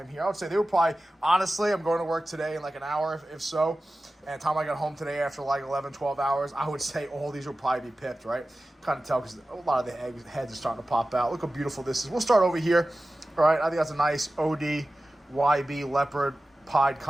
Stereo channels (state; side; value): normal; both; correlation 0.95